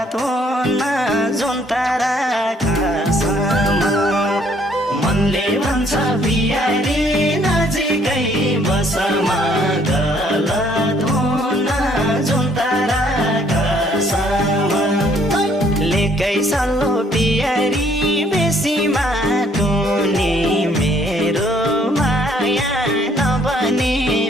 हुन जुन तारा खासमा मनले भन्छ पियारी नजिकै बसमा गलत हुन जुन तारा खासमा लेकै सल्लो पियारी बेसीमा टुनी मेरो माया नबने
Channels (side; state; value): both; normal; correlation 0.64